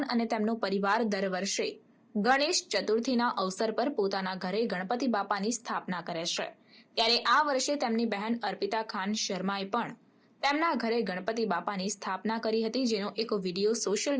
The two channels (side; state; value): both; identical; correlation 1.00